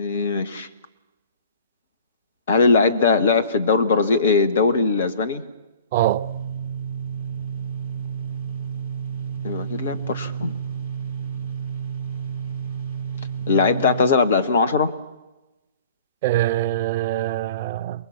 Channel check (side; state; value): both; inverted; correlation -0.46